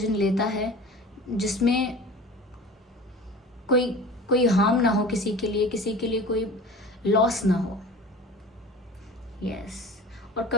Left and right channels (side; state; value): both; normal; correlation 0.39